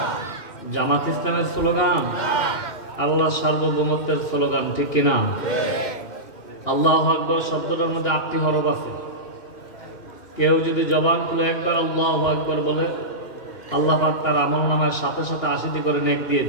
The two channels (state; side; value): late; right; 2.9 ms